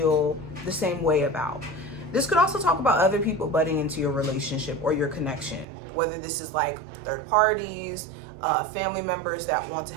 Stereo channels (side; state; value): left; drops out; at 5.7 s